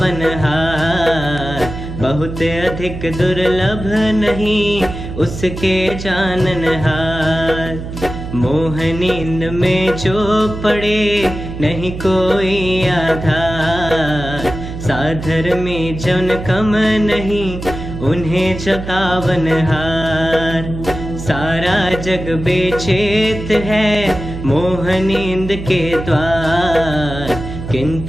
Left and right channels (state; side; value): noise; right; hum, 8 dB below the sound